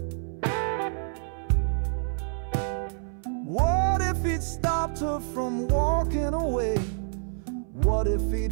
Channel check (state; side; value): silent; left; 58 dB below the other